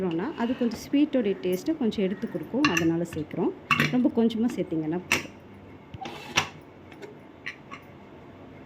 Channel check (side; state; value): both; identical; correlation 1.00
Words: அது கொஞ்சம் ஸ்வீட்டோடைய டேஸ்ட்டை கொஞ்சம் எடுத்து கொடுக்கும், அதனால் சேர்க்குறோம். ரொம்ப கொஞ்சமாக சேர்த்திங்கன்னா போதும்.